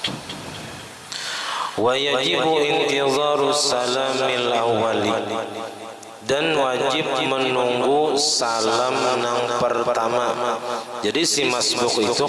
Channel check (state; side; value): identical; both; correlation 1.00